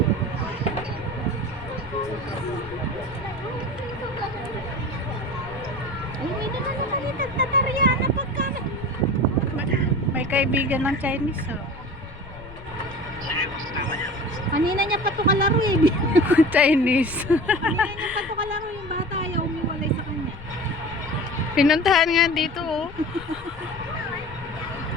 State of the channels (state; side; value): noise; left; rumble, 17 dB below the sound